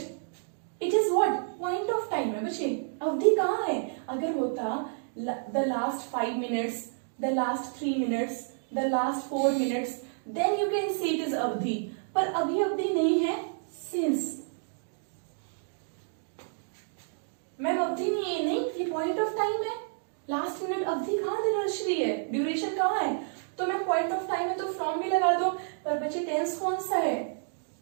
it is what? Point of time है बच्चे, अवधि कहाँ है? अगर होता the last 5 minutes, the last 3 minutes, the last 4 minutes, then you can see it is अवधि, पर अभी अवधि नहीं है, सिंस। मैम अवधि नहीं है, नहीं, ये पॉइंट ऑफ टाइम है, लास्ट मिनट, अवधि कहाँ दर्श रही है? ड्यूरेशन कहाँ है? तो मैम पॉइंट ऑफ टाइम है तो फ्रॉम भी लगा दो, पर बच्चे टेंस कौन सा है?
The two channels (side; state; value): left; silent; digital silence